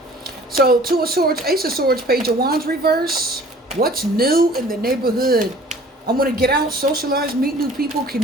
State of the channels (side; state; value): both; normal; correlation 0.50